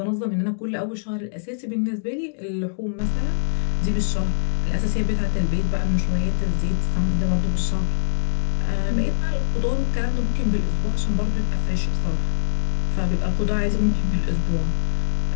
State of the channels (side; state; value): right; silent; digital silence